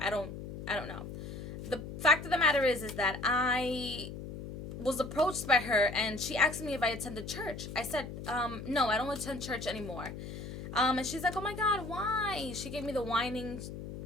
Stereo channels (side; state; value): left; noise; hum, 9 dB below the sound